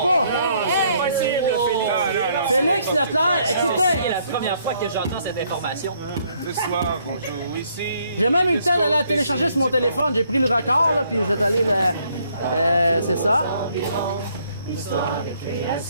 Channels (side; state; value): both; inverted; correlation -0.68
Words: Félix Leclerc, écoutez. C'est la première fois que j'entends cette information. Ce soir, on joue ici. J'ai même eu le temps d'aller la télécharger sur mon téléphone. J'ai pris le record, là, puis je vais aller le... c'est ça.